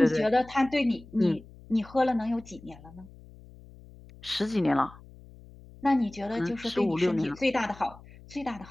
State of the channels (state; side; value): noise; left; hum, 21 dB below the sound